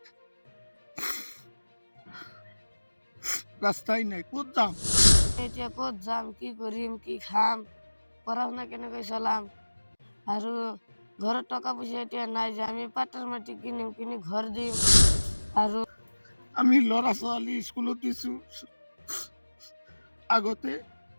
ৰাস্তাই নাই, কোথ যাম? এতিয়া ক'ত যাম, কি কৰিম, কি খাম, পঢ়া শুনা কেনেকৈ চলাম আৰু ঘৰত টকা পইচা এতিয়া নাই যে আমি পাটৰ মাটি কিনিম, কিনি ঘৰ দিম আৰু আমি ল'ৰা ছোৱালী স্কুলত দিছো। আগতে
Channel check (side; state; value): both; inverted; correlation -1.00